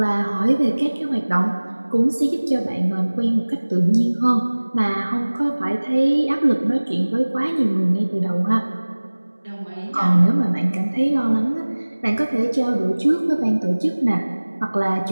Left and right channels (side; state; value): both; inverted; correlation -1.00